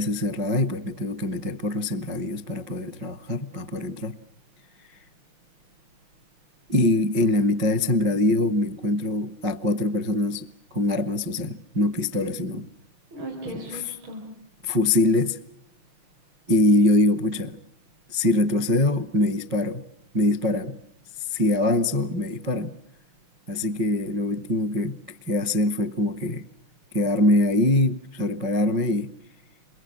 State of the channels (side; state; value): left; late; 5.5 ms